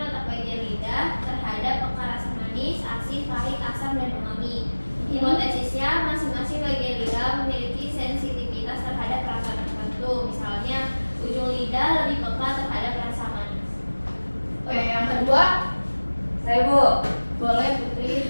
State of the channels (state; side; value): inverted; both; correlation -1.00